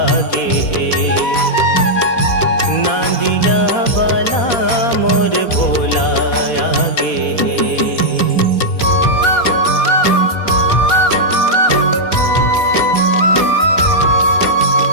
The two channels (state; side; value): late; right; 4.1 ms